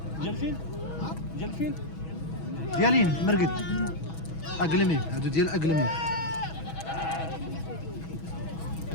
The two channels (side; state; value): right; late; 6.2 ms